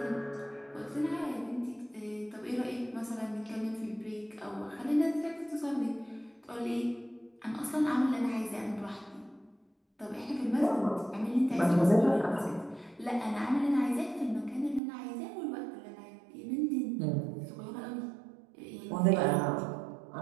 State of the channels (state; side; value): drops out; left; at 14.8 s